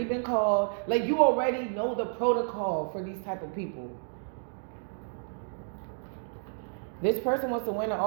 been called. Like, you already know the protocol for these type of people. This person wants to win at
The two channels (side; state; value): left; silent; digital silence